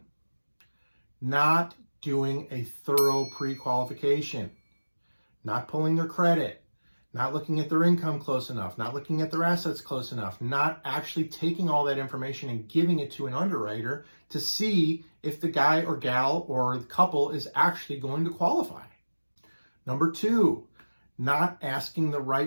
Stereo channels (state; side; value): inverted; both; correlation -1.00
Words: not doing a thorough pre-qualification, not pulling their credit, not looking at their income close enough, not looking at their assets close enough, not actually taking all that information and giving it to an underwriter to see if the guy or gal or the couple is actually going to qualify. Number two, not asking the